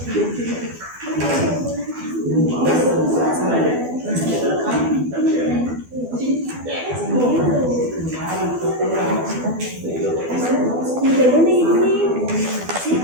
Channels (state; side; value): late; left; 12 ms